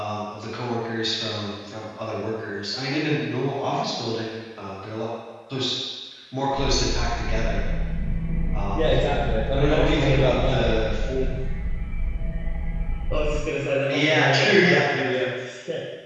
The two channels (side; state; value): both; identical; correlation 1.00